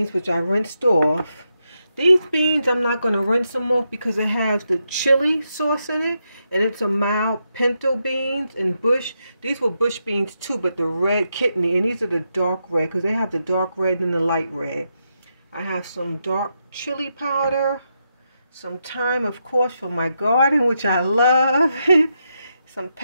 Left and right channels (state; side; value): inverted; both; correlation -0.84